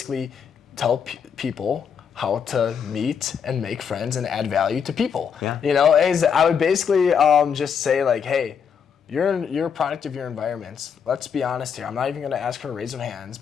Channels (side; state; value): right; quieter; 7.1 dB